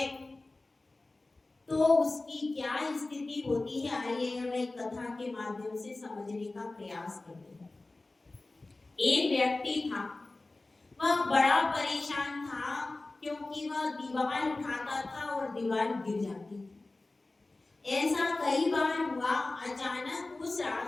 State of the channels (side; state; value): right; quieter; 3.1 dB